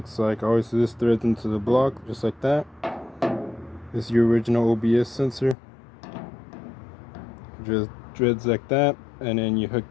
like. Obviously this threads into the block just like that. This is your original OBS sensor. Just threads like that, and then you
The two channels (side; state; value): right; drops out; at 5.6 s